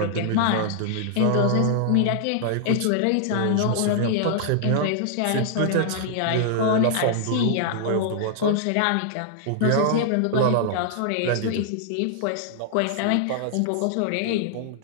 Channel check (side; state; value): both; different; correlation -0.01